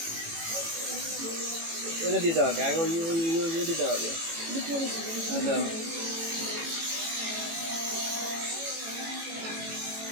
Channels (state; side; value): late; left; 18 ms